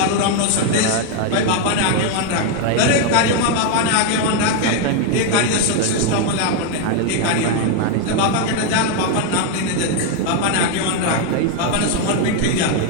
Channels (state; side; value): different; both; correlation 0.01